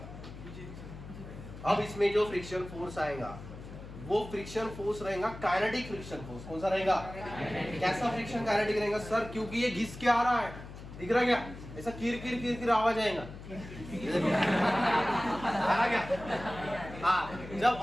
अब इसमें जो फ्रिक्शन फोर्स आएगा वो फ्रिक्शन फोर्स रहेगा काइनेटिक फ्रिक्शन फोर्स। कौन सा रहेगा? कैसा फ्रिक्शन? काइनेटिक रहेगा सर, क्योंकि ये घिस के आ रहा है। दिख रहा क्या? ऐसा किर किर किर किर आवाज आएगा। आ रहा क्या? हाँ, जब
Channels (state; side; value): noise; left; hum, 13 dB below the sound